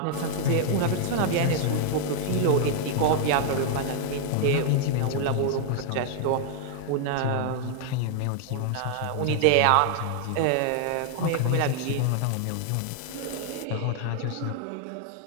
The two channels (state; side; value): different; both; correlation 0.00